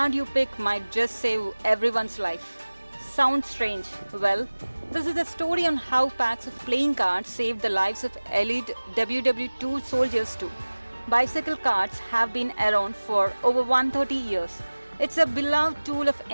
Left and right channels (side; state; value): both; inverted; correlation -1.00